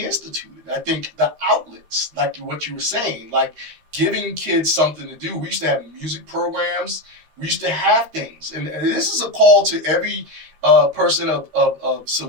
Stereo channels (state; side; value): late; left; 13 ms